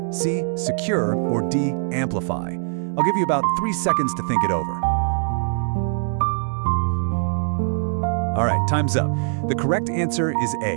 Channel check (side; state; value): left; silent; digital silence